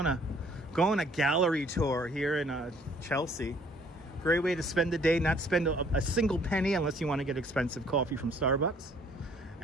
a gallery tour here in Chelsea. Great way to spend the day, not spend a single penny unless you want to get expensive coffee from Starbucks.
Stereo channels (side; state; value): both; normal; correlation 0.60